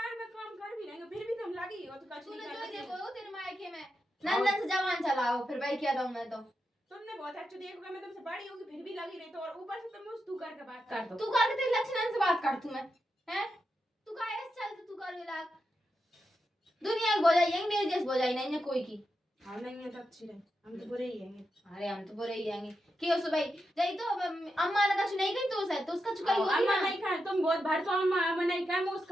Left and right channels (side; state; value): both; normal; correlation 0.87